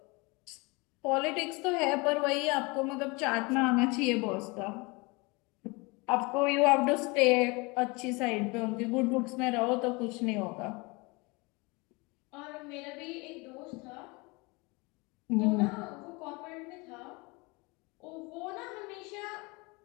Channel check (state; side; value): quieter; right; 26.9 dB